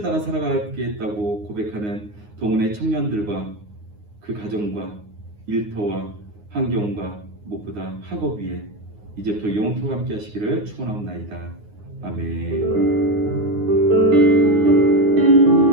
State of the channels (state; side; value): late; left; 9.6 ms